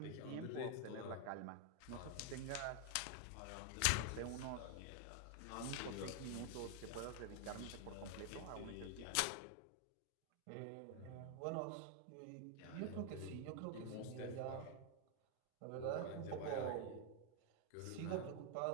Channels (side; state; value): both; different; correlation 0.00